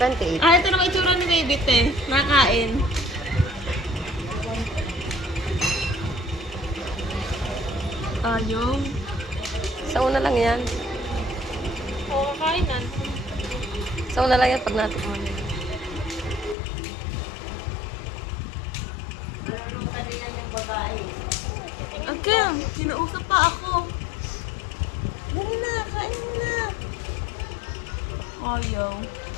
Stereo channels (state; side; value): drops out; right; at 16.6 s